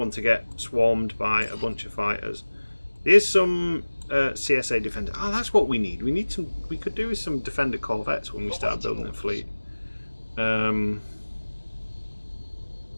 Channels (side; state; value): both; inverted; correlation -1.00